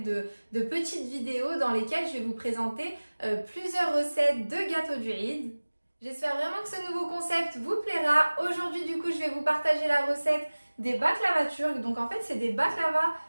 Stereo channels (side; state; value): both; inverted; correlation -1.00